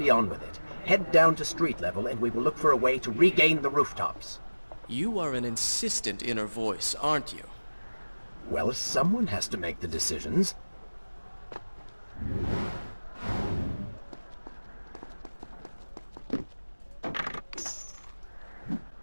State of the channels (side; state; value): both; inverted; correlation -1.00